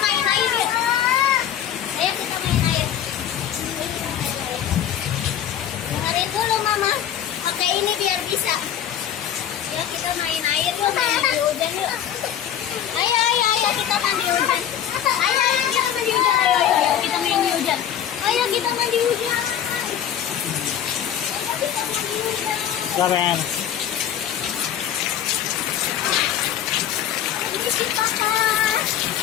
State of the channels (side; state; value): right; quieter; 9.9 dB